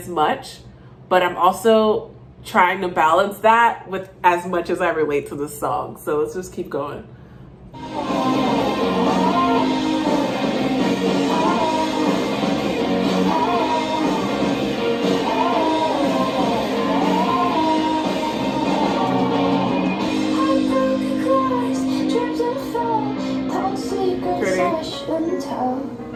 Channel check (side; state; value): both; identical; correlation 1.00